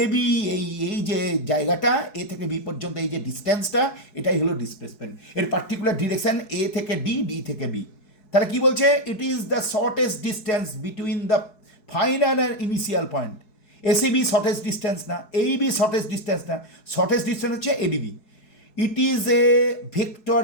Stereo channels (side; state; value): right; late; 4.7 ms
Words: বি, এই যে জায়গাটা এ থেকে বি পর্যন্ত, এই যে ডিস্টেন্সটা, এটাই হলো ডিসপ্লেসমেন্ট। এর পার্টিকুলার ডিরেকশন এ থেকে ডি, ডি থেকে বি। তাহলে কি বলছে? ইট is the shortest distance between the final and initial point. ACB shortest distance না, এইবি শর্টেস্ট ডিস্টেন্স না, শর্টেস্ট ডিস্টেন্স হচ্ছে ADB. It is a vector